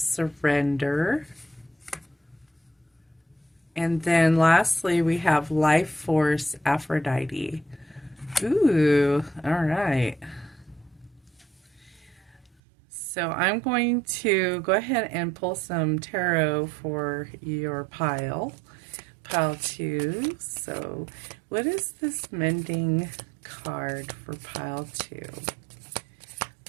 And then lastly we have Life Force Aphrodite. Ooh, all right. So I'm going to go ahead and pull some tarot for your pile 2. So what is this Mending card for pile 2?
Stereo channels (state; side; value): drops out; left; at 12.5 s